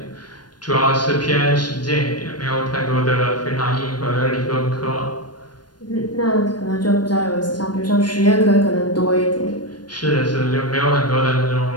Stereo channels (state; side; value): late; right; 0.70 ms